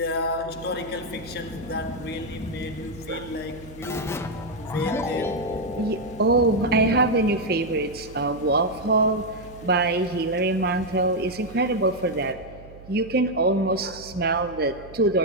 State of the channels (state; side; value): noise; right; hum, 18 dB below the sound